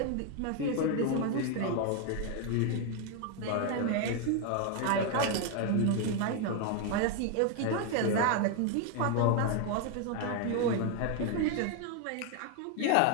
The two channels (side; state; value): both; different; correlation 0.01